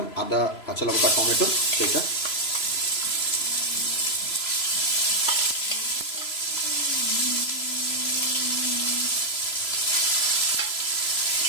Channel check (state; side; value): late; right; 3.0 ms